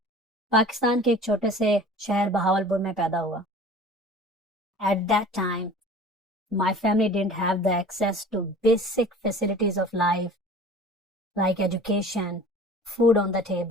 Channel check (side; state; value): both; normal; correlation 0.43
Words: पाकिस्तान के एक छोटे से शहर बहावलपुर में पैदा हुआ। At that time my family didn't have the access to basic facilities of life like education, food on the